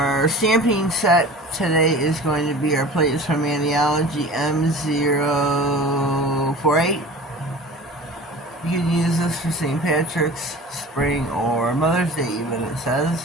stamping set today is going to be our plates from Andiology M048. You can use this for St. Patrick's, spring, or Mother's Day even, it says.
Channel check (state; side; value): normal; both; correlation 0.39